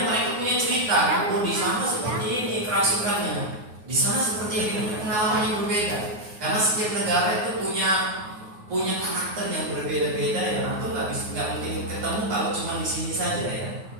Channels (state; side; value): late; left; 9.5 ms